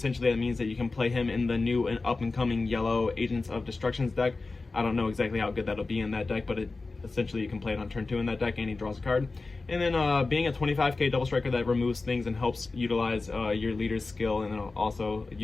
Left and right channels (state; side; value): quieter; right; 3.7 dB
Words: that means that you can play him in the new and up-and-coming yellow Agents of Destruction's deck. I don't know exactly how good that'll be in that deck, but essentially you can play it on turn 2 in that deck and he draws a card. And then being a 25k double striker that removes things and helps utilize your leader's skill, and then also